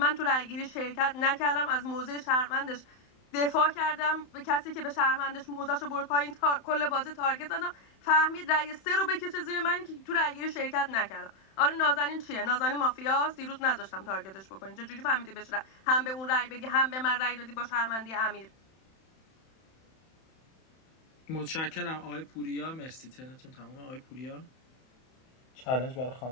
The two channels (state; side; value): late; right; 31 ms